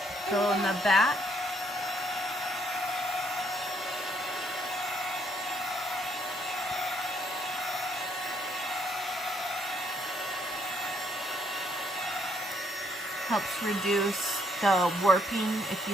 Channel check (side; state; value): both; normal; correlation 0.70